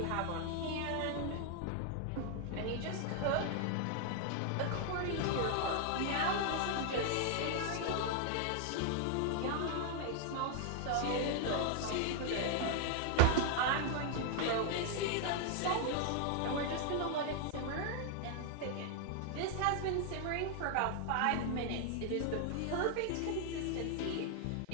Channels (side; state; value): both; different; correlation 0.00